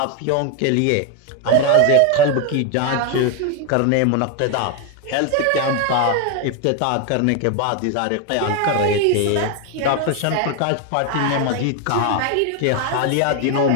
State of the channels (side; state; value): both; different; correlation 0.01